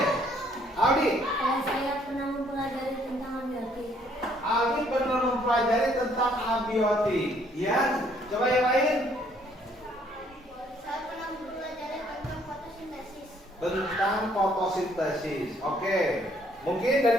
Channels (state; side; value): normal; both; correlation 0.65